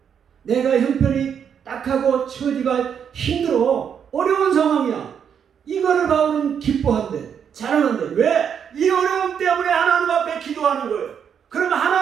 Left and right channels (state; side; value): quieter; left; 7.8 dB